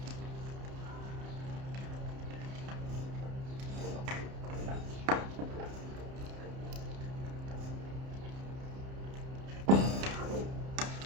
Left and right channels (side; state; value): left; late; 31 ms